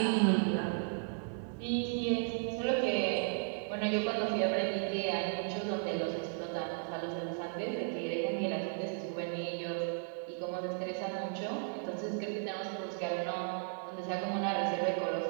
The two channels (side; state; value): left; silent; 54 dB below the other